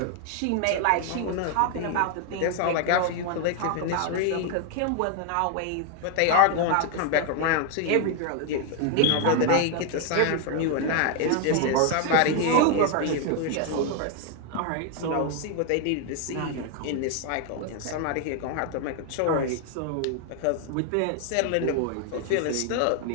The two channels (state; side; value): different; both; correlation 0.00